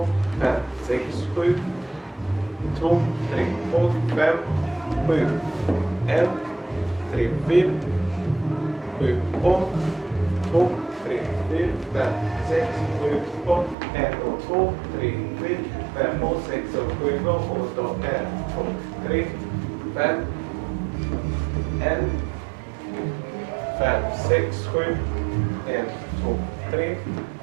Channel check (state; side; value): drops out; left; at 13.8 s